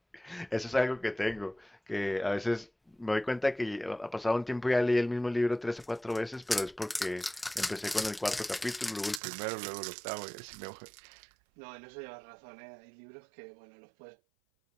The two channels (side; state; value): left; drops out; at 9.2 s